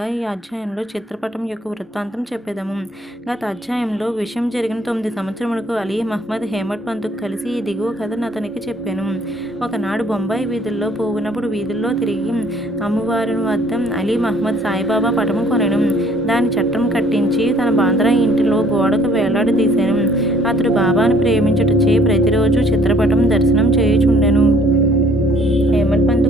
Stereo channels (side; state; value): both; normal; correlation 0.60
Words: ఈ అధ్యాయంలో చిత్రపటం యొక్క వృత్తాంతం చెప్పేదము. గత అధ్యాయంలో విషయం జరిగిన 9 సంవత్సరములకు అలీ మహ్మద్ హేమట్ పంతుకు కలిసి ఈ దిగువ కథను అతనికి చెప్పాను. ఒకనాడు బొంబాయి వీధుల్లో పోవునప్పుడు వీధుల్లో తిరిగి అమ్మవారి వద్ద అలీ మహ్మద్ సాయిబాబా పటము కొనెను. దాని చట్టం కట్టించి తన బాంద్రా ఇంటిలో గోడకు వేలాడదీశాను. అతడు బాబాను ప్రేమించుటచే ప్రతిరోజు చిత్రపటం దర్శనం చేయుచుండెను. హేమట్